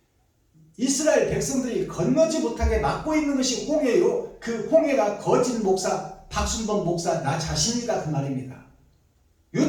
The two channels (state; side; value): identical; both; correlation 1.00